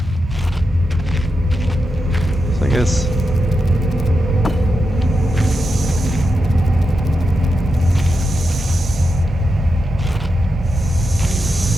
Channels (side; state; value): both; normal; correlation 0.88